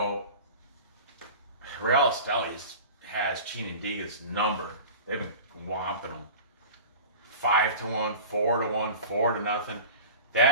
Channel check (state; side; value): inverted; both; correlation -0.35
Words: Real Esteli has Chinandega's number. They've been whomping them. 5-1, 4-1, 4-0.